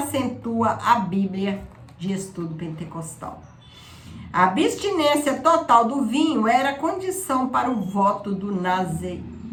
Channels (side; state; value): both; identical; correlation 1.00